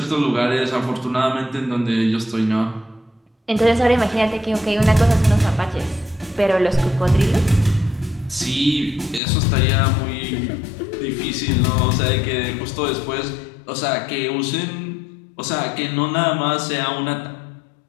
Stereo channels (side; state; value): right; drops out; at 9.2 s